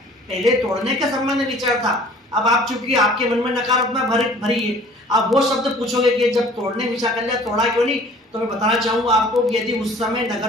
पहले तोड़ने के संबंध में विचार था। अब आप चूंकि आपके मन में नकारात्मक भरी है, आप वो शब्द पूछोगे कि जब तोड़ने विचार कर लिया तोड़ा क्यों नहीं? तो मैं बताना चाहूंगा आपको कि यदि उस समय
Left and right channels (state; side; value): normal; both; correlation 0.50